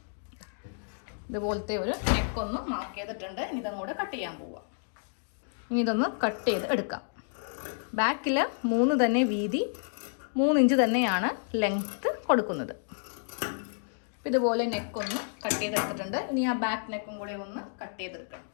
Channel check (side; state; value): right; silent; digital silence